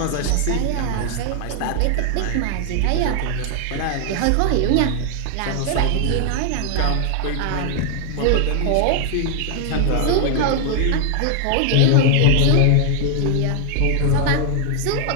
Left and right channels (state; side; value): different; both; correlation 0.00